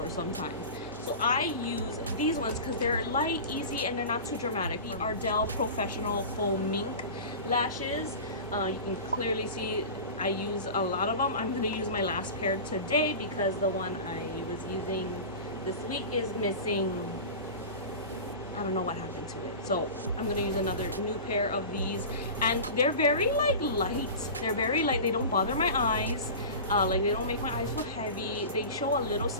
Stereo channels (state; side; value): inverted; both; correlation -0.32